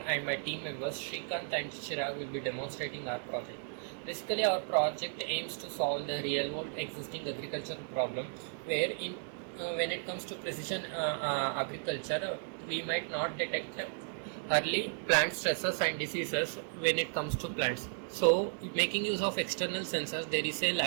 and my team members Shrikanth and Chirag will be demonstrating our project. Basically, our project aims to solve the real world existing agricultural problem where when it comes to precision agriculture, we might not detect early plant stresses and diseases when it comes to plants. So making use of external sensors, there is a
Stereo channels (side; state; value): left; silent; 55 dB below the other